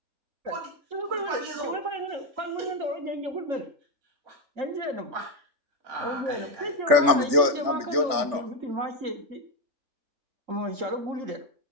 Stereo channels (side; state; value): left; late; 3.4 ms